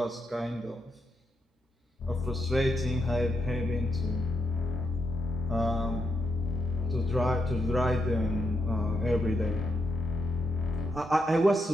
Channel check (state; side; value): normal; both; correlation 0.81